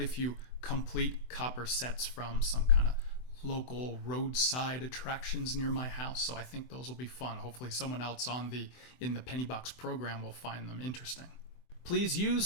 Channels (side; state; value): right; late; 24 ms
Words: a few complete copper sets from some kind of local roadside attractions near my house. So I think those will be fun. Hopefully someone else in the Penny Box program will find them interesting. Please